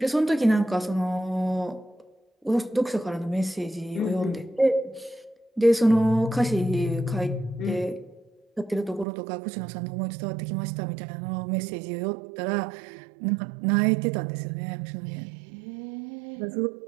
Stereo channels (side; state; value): left; drops out; at 9.1 s